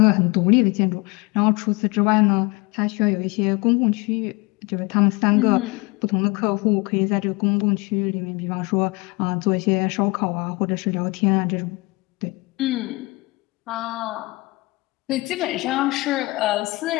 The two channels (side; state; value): right; quieter; 24.6 dB